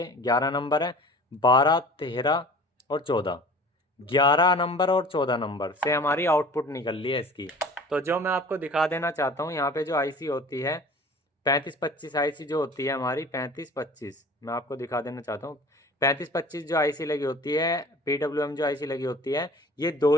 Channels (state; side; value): normal; both; correlation 0.44